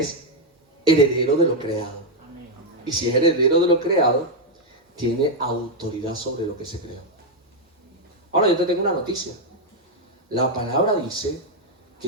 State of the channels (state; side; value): normal; both; correlation 0.01